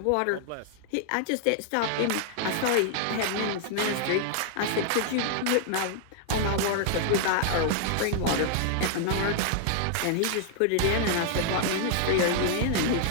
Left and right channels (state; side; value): different; both; correlation 0.00